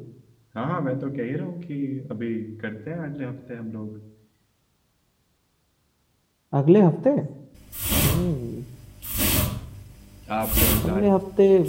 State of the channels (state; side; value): identical; both; correlation 1.00